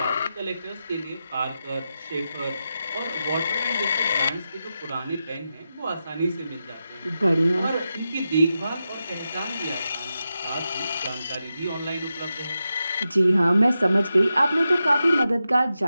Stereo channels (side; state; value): both; inverted; correlation -0.89